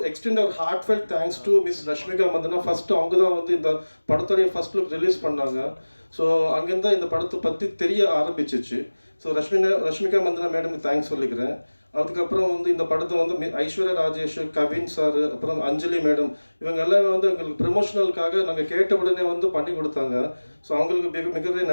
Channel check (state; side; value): inverted; both; correlation -1.00